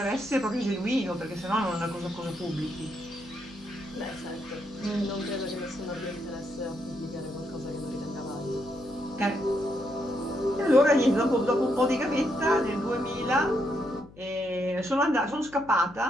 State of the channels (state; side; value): noise; left; hum, 22 dB below the sound